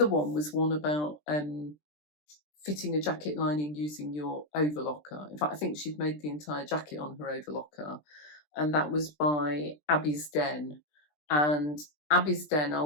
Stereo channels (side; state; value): right; late; 20 ms